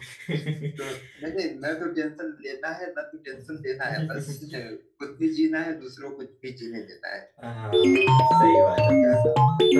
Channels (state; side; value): identical; both; correlation 1.00